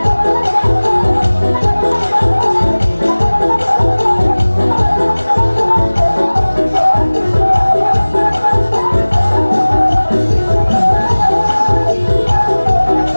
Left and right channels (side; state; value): both; inverted; correlation -1.00